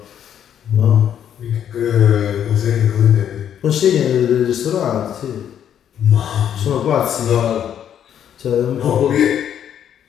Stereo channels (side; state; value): right; quieter; 9.5 dB